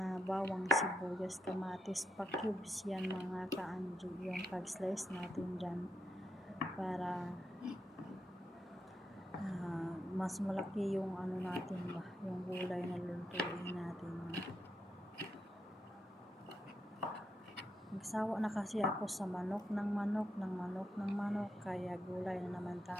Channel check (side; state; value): both; normal; correlation 0.83